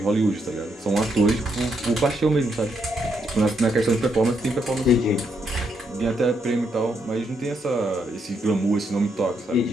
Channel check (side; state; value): both; normal; correlation 0.77